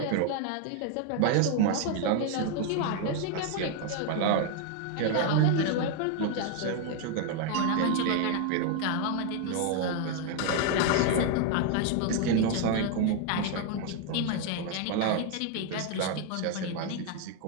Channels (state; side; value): different; both; correlation 0.00